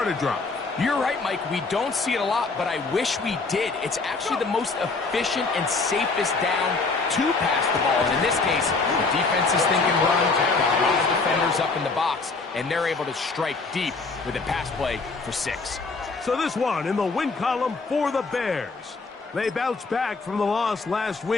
a drive. You're right, Mike. We don't see it a lot, but I wish we did. It's actually the most efficient and safest down to pass the ball. And in this case, the defense is thinking run, a lot of defenders up in the box, and they're able to strike deep with a pass play for 6. So this one in the win column for the Bears. They bounced back from the loss last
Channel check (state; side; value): quieter; right; 4.0 dB